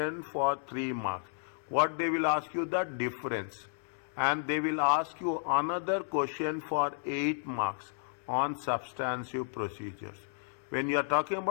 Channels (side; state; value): right; silent; digital silence